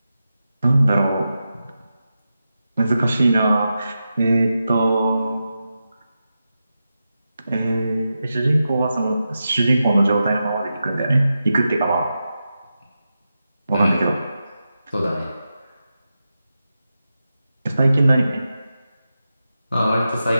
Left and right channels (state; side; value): inverted; both; correlation -0.90